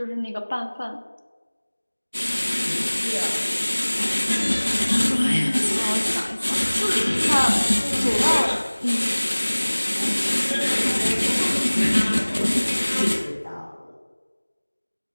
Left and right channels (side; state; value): both; inverted; correlation -1.00